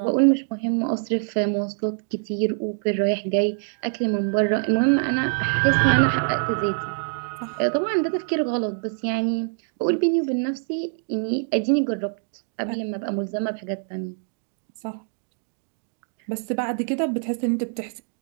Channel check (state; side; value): silent; left; digital silence